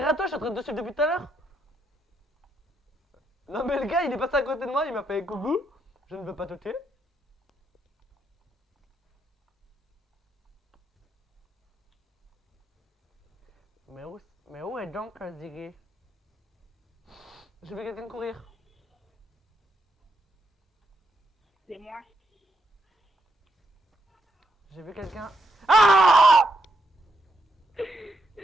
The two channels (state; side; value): normal; both; correlation 0.79